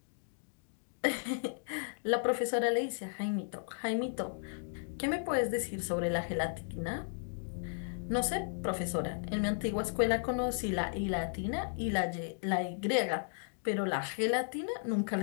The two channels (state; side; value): silent; right; digital silence